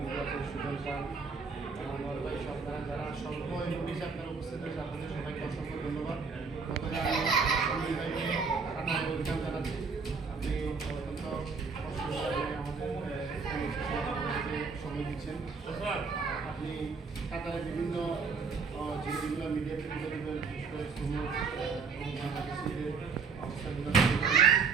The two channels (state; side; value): quieter; left; 5.1 dB